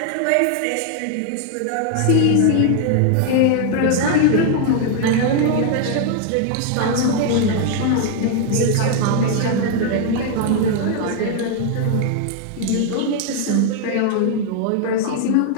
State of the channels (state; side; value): different; both; correlation 0.00